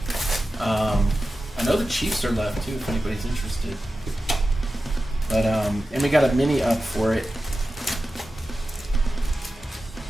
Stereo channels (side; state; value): both; normal; correlation 0.93